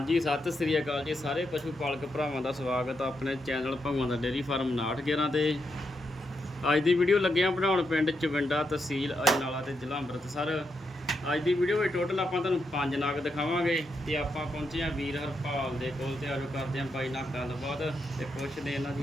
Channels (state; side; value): normal; both; correlation 0.82